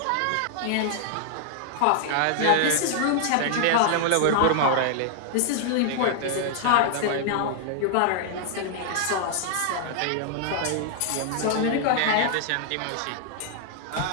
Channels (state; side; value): different; both; correlation 0.00